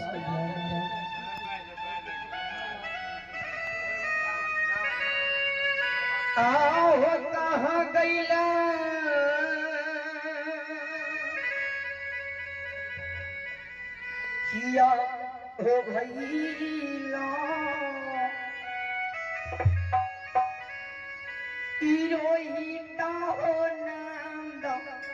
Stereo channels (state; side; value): identical; both; correlation 1.00